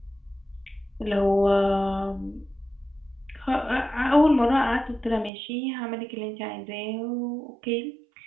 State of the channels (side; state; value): left; drops out; at 5.3 s